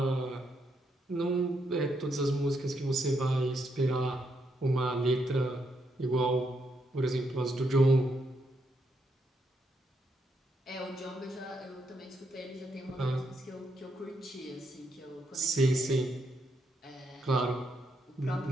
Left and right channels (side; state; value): both; normal; correlation 0.78